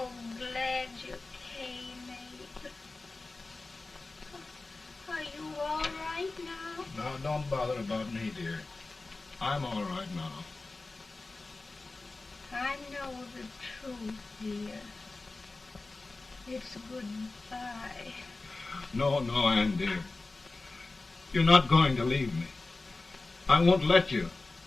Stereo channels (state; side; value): quieter; right; 3.4 dB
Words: glad you came, Abe. Are you all right now? No, don't bother about me, dear. I'm all right now. I know the truth, dear. It's goodbye. No, Ann, dear. You're not going to leave me. I won't let you.